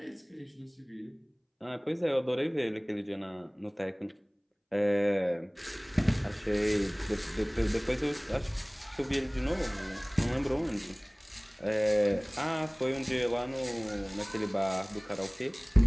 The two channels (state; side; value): identical; both; correlation 1.00